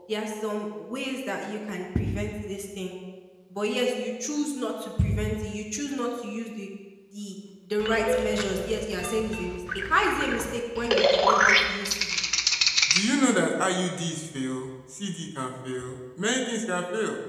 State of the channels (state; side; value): identical; both; correlation 1.00